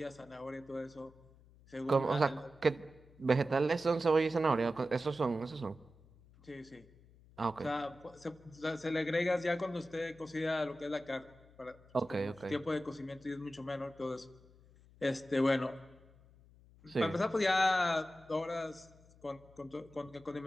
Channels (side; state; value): left; noise; hum, 25 dB below the sound